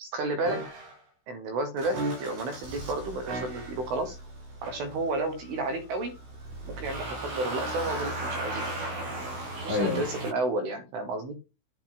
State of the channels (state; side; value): late; left; 16 ms